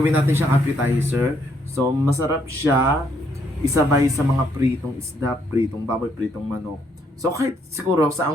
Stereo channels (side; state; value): both; normal; correlation 0.71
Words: natin siyang appetizer. So masarap siya isabay sa mga pritong isda, pritong baboy, pritong manok. So kahit siguro